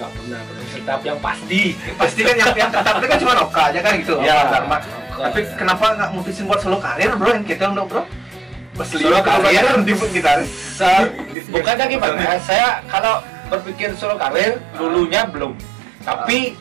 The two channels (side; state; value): left; drops out; at 11.4 s